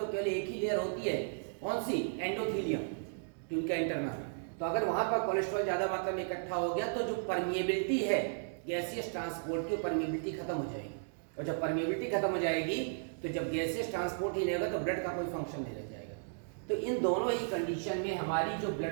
केवल एक ही लेयर होती है, कौन सी, एंडोथीलियम, ट्यूनिका इंटरना। तो अगर वहां पर कोलेस्ट्रॉल ज्यादा मात्रा में इकट्ठा हो गया तो जो परमिएबिलिटी है गैसियस ट्रांसपोर्ट की, परमिएबिलिटी खत्म हो जाएगी। और जब परमिएबिलिटी खत्म हो जाएगी तो जब गैसियस ट्रांसपोर्ट ही नहीं होगा तो ब्लड का कोई फंक्शन नहीं रह जाएगा। तो इन दोनों ही कंडीशन में हमारी जो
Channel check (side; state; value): left; silent; digital silence